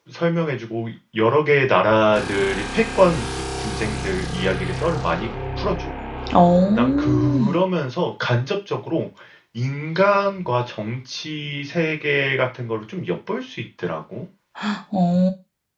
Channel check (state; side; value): identical; both; correlation 1.00